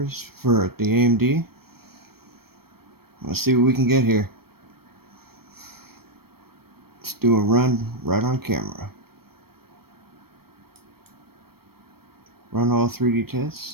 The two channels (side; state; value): left; late; 0.95 ms